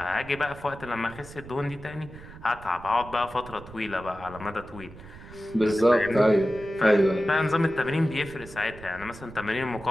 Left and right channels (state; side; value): noise; right; rumble, 17 dB below the sound